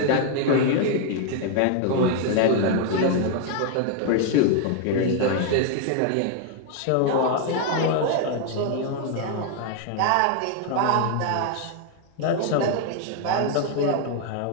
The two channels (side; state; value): both; different; correlation 0.00